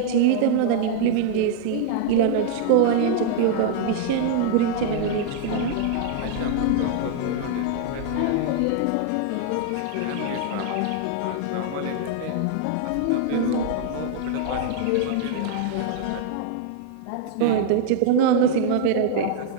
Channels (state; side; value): different; both; correlation 0.00